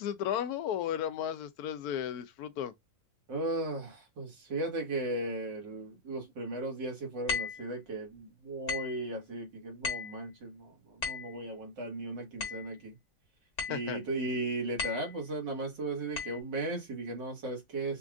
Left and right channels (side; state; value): both; normal; correlation -0.11